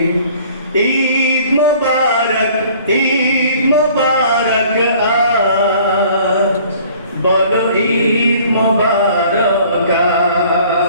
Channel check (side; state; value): both; inverted; correlation -0.53